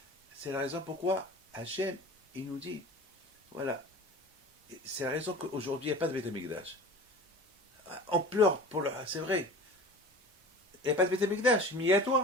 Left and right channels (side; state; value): both; normal; correlation 0.38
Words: C'est la raison pourquoi Hachem, il nous dit, voilà, c'est la raison qu'aujourd'hui, il n'y a pas de Beth Amikdash. On pleure c'est vrai. Il n'y a pas de Beth Amikdash, mais il y a